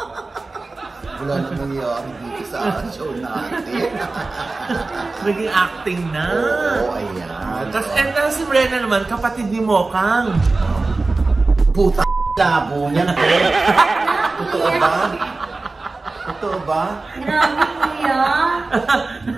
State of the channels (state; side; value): quieter; left; 3.5 dB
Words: Wala na nangyayari dito sa show natin. Naging acting na. Oo, ayan. Tapos si Brenna naman, kapatid ni Mokang. Puta labo niyan. Totoo ba? Totoo ba? Grabe, kuya.